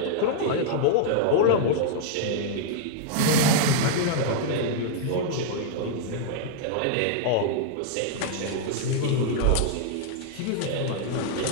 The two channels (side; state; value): both; different; correlation -0.01